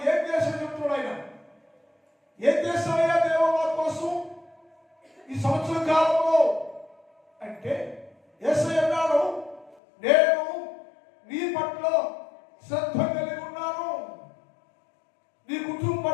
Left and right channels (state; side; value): drops out; right; at 9.8 s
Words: ఏం చేశాడో చెప్తున్నాడు. ఆయన ఏం చేస్తాడయ్యా దేవ మా కోసం ఈ సంవత్సర కాలంలో అంటే, యేసయ్య అన్నాడు, నేను నీ పట్ల శ్రద్ధ కలిగి ఉన్నాను, నీ కుటుంబం